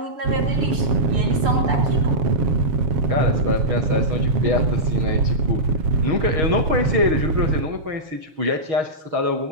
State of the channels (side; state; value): left; late; 6.4 ms